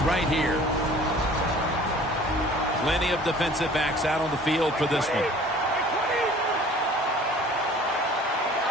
right here. Plenty of defensive backs out on the field for this one.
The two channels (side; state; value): both; normal; correlation 0.49